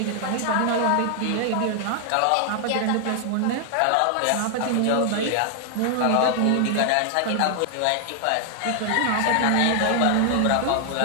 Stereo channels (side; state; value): both; different; correlation 0.00